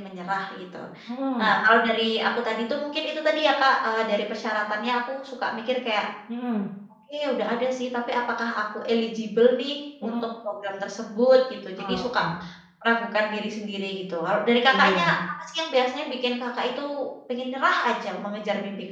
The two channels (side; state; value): both; identical; correlation 1.00